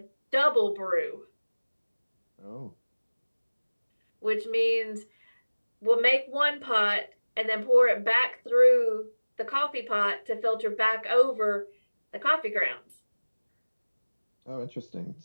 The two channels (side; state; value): both; inverted; correlation -1.00